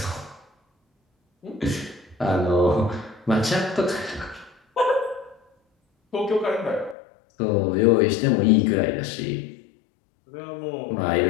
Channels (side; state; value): right; drops out; at 7.0 s